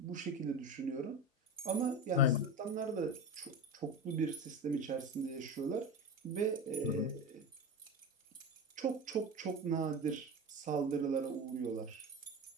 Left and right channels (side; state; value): both; normal; correlation 0.25